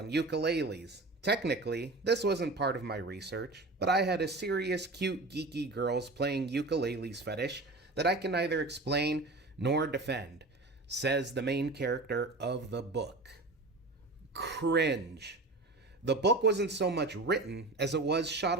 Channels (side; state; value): left; quieter; 3.1 dB